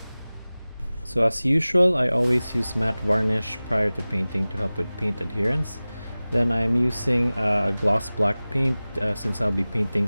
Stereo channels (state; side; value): inverted; both; correlation -0.98